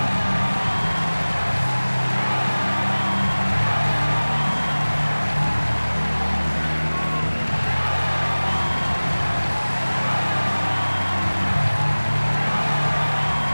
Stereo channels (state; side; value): inverted; both; correlation -1.00